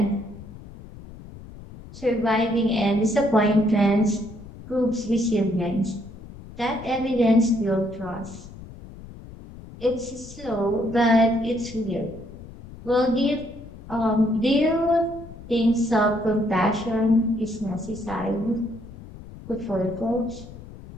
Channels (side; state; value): left; noise; rumble, 16 dB below the sound